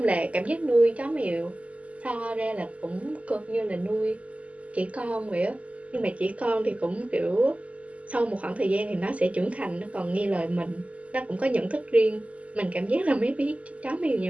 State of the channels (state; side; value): late; left; 0.067 ms